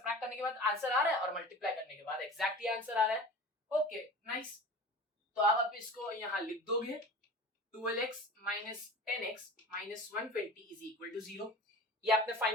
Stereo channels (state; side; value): normal; both; correlation 0.38